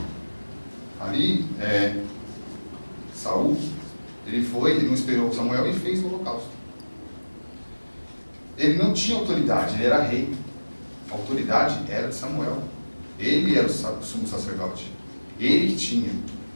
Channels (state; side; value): inverted; both; correlation -1.00